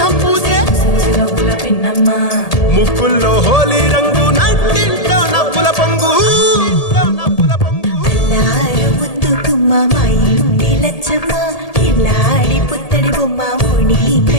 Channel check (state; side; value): late; right; 1.8 ms